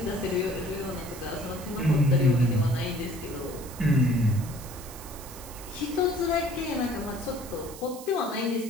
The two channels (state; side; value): noise; right; hiss, 15 dB below the sound